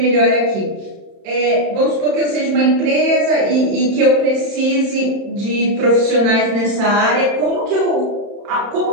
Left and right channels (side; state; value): left; late; 31 ms